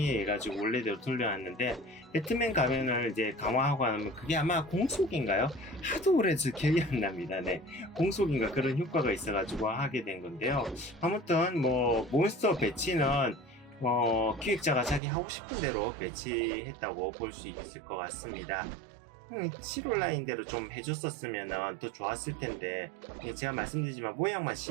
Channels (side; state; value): left; drops out; at 15.0 s